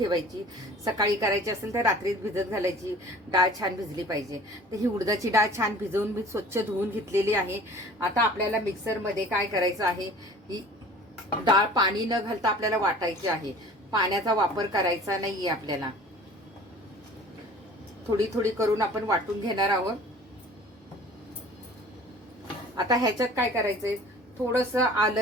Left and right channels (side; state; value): both; normal; correlation 0.46